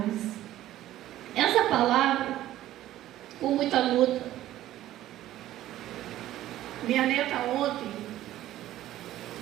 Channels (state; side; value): quieter; left; 13.9 dB